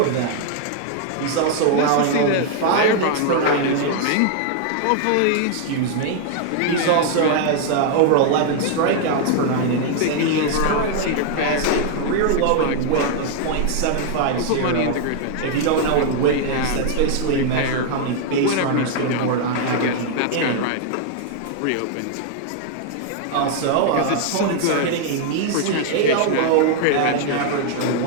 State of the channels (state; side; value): different; both; correlation 0.00